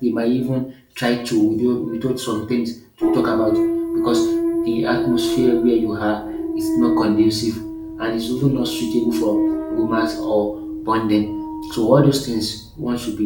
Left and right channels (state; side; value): identical; both; correlation 1.00